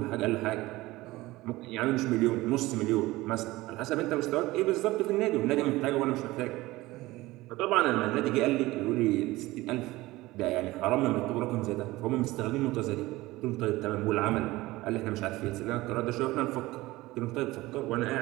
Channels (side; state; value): left; quieter; 19.1 dB